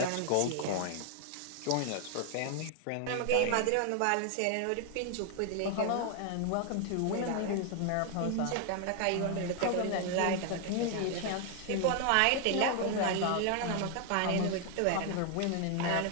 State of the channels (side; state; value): both; different; correlation 0.00